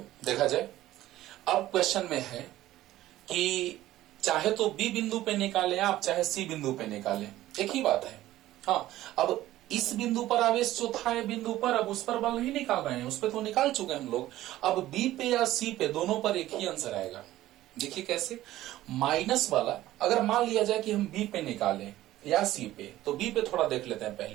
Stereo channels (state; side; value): quieter; left; 15.0 dB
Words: देखा जाए। अब क्वेश्चन में है कि चाहे तो बी बिंदु पे निकाले आप, चाहे सी बिंदु पे निकाले, एक ही बात है। हाँ, अब इस बिंदु पर आवेश जो था ये बिंदु पर, अब उस पर बल नहीं निकाल रहे हैं, उस पर तो निकाल चुके हैं हम लोग। अब बी पे या सी पे दोनों पर एक ही आंसर आएगा। देखिए कैसे, माइनस वाला अगर मान लिया जाए कि हम बी पे निकालें या सी पे, तो बी पे थोड़ा देख लेते हैं